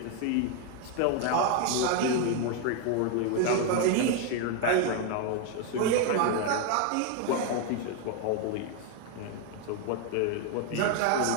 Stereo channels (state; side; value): different; both; correlation 0.01